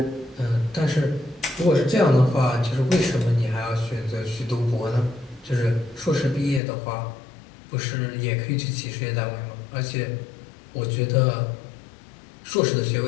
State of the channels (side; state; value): right; drops out; at 6.6 s